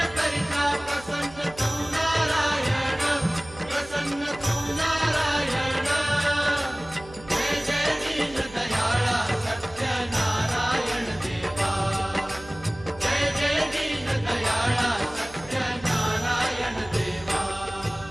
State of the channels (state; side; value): noise; right; hum, 19 dB below the sound